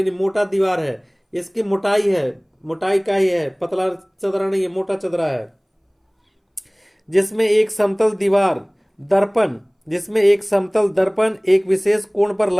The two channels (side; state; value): both; identical; correlation 1.00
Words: मोटा दीवार है, इसकी मोटाई का ही है, पतला चदरा नहीं है, मोटा चदरा है। जिसमें एक समतल दर्पण एक विशेष कोण पर